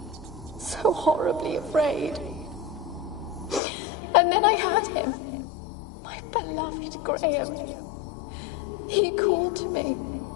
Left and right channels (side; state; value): right; drops out; at 3.6 s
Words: So horribly afraid. And then I heard him. My beloved Graham. He called to me.